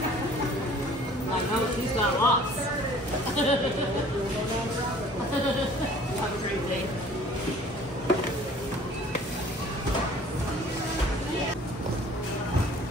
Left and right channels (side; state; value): both; normal; correlation 0.51